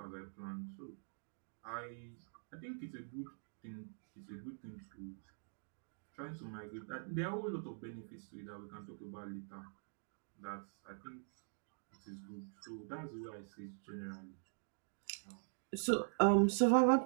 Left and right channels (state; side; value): silent; left; digital silence